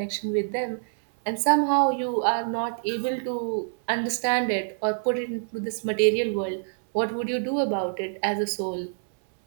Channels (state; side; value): silent; left; 61 dB below the other